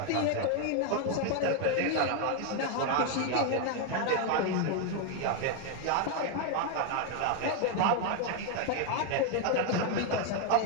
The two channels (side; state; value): both; different; correlation 0.01